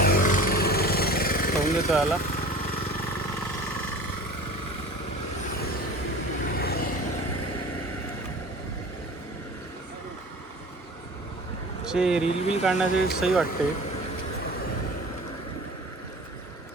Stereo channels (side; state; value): both; normal; correlation 0.40